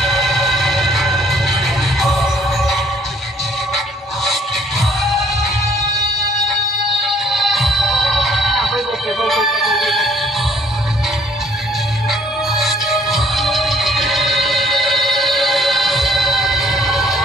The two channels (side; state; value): both; normal; correlation 0.61